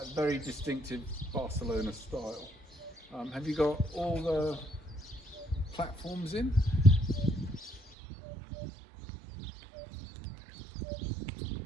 Very distinctive Barcelona style. Have you got all the platforms in?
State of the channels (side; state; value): left; drops out; at 8.0 s